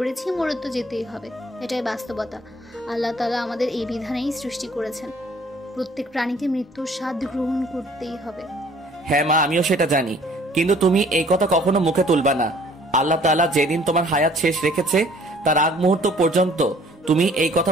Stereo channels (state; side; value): normal; both; correlation 0.56